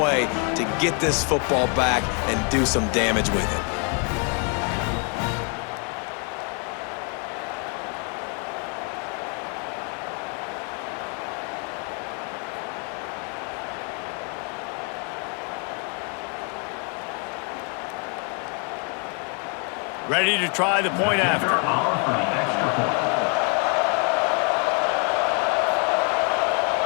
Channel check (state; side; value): quieter; right; 37.5 dB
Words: to get this football back and do some damage with it. Ready to try the point after. For the extra point.